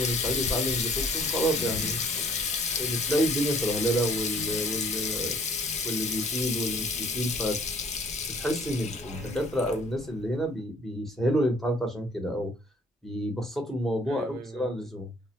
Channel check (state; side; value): normal; both; correlation 0.57